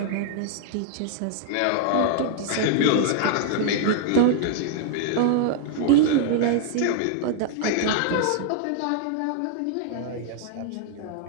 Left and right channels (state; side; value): different; both; correlation 0.00